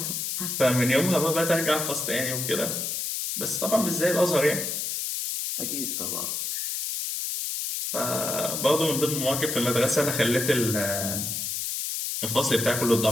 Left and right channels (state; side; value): noise; left; hiss, 2 dB below the sound